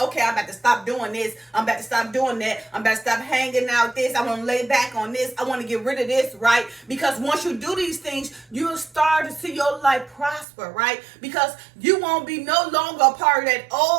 okay, I'm about to stop doing this. I'm about to stop doing that. I'm about to stop hanging out this. I want to lay back on this. I want to get rid of this, right? Because once you do these things, you'll start to see your life prosper, right? Because you won't be no longer a part of that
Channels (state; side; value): drops out; left; at 10.5 s